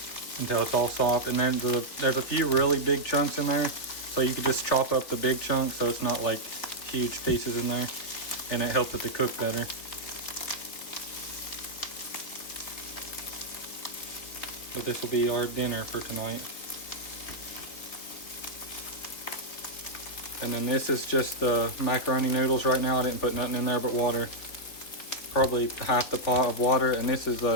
until it's all soft. And then there's a few really big chunks in there, so you can just chop up the big chunks so it's not like huge pieces in there, and it helps it to cook better. But this will be our dinner for tonight. And then this is just the macaroni noodles right now. I didn't put nothing in there but water. Probably half the pot of water. And this is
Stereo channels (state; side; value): late; right; 3.6 ms